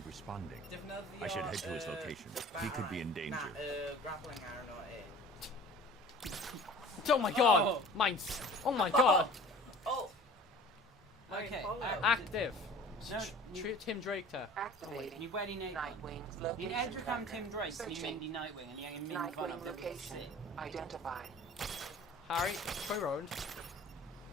responding? Defnyddio... I should head to his location. He could be in danger. Na, grappling arrow no Oh my god! Oh. Mine's. Oh my god! Oh! My Okay, Apollo. Active. No, Treat Tim Drake to. Activating. Ni wedi neud... Nightwing's Ni'n location edrych am tracker. Tim Drake, ni'n Searching. mynd I Nightwing, a ni angen mynd fan am Nightwing location identified. Harry, Troy Road.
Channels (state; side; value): normal; both; correlation 0.45